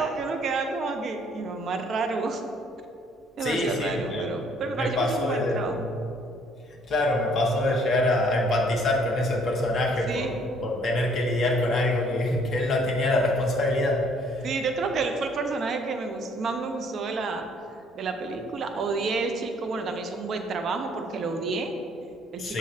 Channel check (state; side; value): normal; both; correlation 0.62